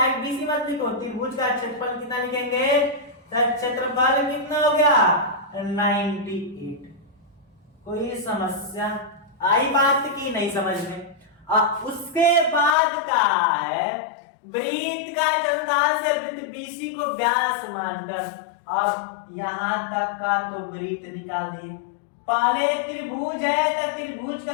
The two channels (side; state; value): right; drops out; at 12.8 s